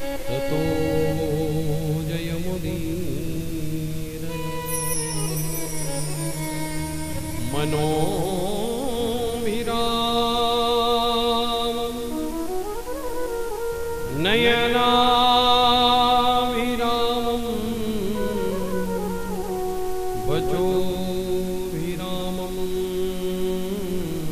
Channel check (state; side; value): identical; both; correlation 1.00